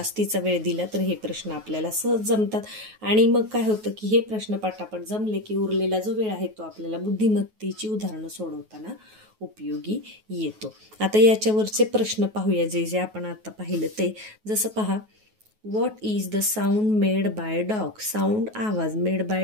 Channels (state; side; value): late; left; 9.3 ms